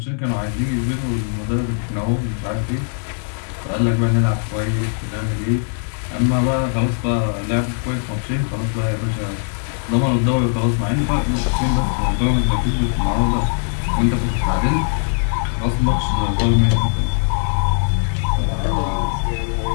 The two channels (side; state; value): right; silent; digital silence